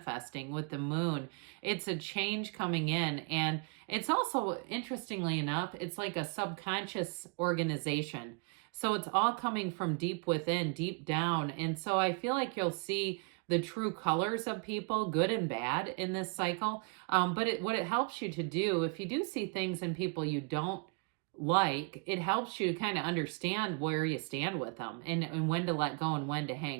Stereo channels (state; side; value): quieter; left; 34.4 dB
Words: with the moon. It's a change coming in. And it's also, interestingly enough, it's like a subconscious organization. So it's all coming from deep within, deep down. And so I feel like you'll see the true colors of people, good and bad, in this cycle. But what it helps you to do, if you do see things in people you don't like, it helps you to kind of understand where you stand with them, and when to let go and when to